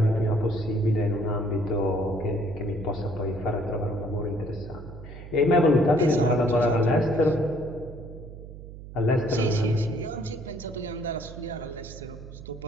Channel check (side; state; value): right; noise; hum, 14 dB below the sound